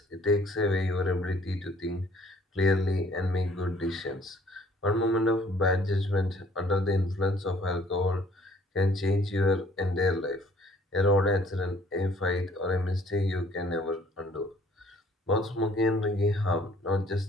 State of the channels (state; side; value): normal; both; correlation 0.58